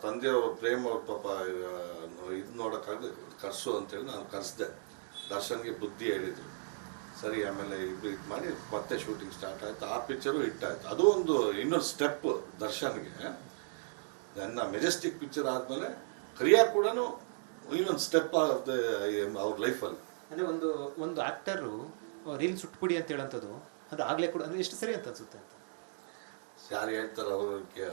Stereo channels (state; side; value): silent; left; digital silence